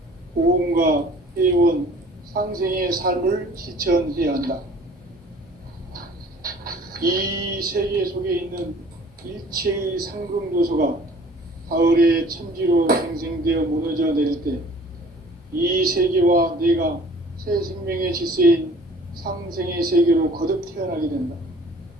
보험과 회원, 상생의 삶을 실천해야 한다. 이 세계 속에 있는 일체의 상금 요소가 가을의 천지로 생생되어 무너져 내릴 때 이 세계와 내가 새 생명의 질서인 상생의 세계로 거듭 태어나게 된다.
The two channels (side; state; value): both; normal; correlation 0.51